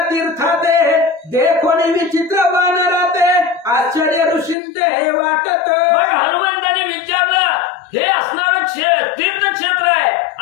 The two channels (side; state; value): right; drops out; at 4.5 s